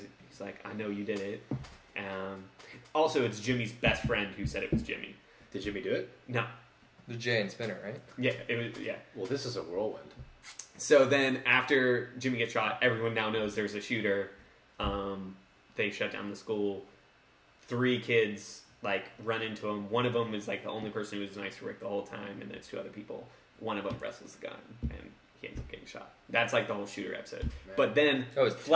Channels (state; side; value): identical; both; correlation 1.00